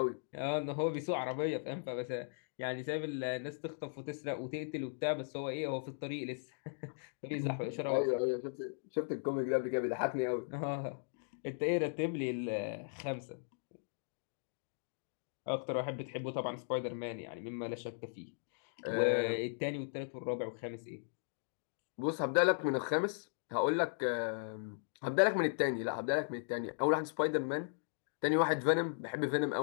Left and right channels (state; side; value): silent; right; digital silence